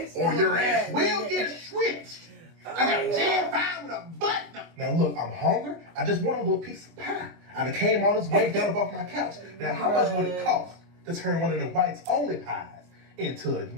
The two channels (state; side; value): late; left; 24 ms